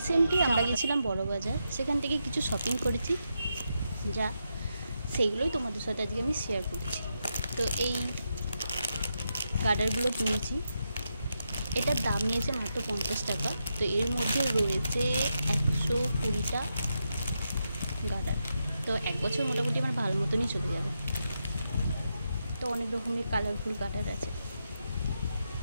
আমরা গেছিলাম বড়বাজার, সেখান থেকে কিছু শপিং করেছি, যা সেইগুলোই তোমাদের সাথে আজকে আমি শেয়ার করছি। তো এই গার্ডারগুলো কিনেছি, এটার দাম নিয়েছে মাত্র 50 টাকা। তো এর মধ্যে রয়েছে 120টা গার্ডার। তো এক বছর মোটামুটি আমার ভালো মতনই চলে যাবে। তো অনেক রকমের কালারফুল গার্ডার আছে।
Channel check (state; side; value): inverted; both; correlation -0.85